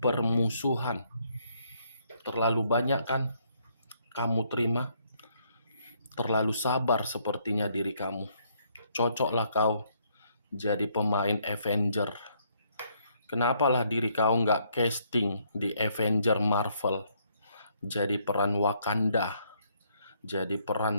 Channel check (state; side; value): inverted; both; correlation -0.70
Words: permusuhan. Terlalu banyak kan kamu terima? Terlalu sabar sepertinya diri kamu. Cocoklah kau jadi pemain Avenger. Kenapalah diri kau nggak casting di Avenger Marvel, jadi peran Wakanda, jadi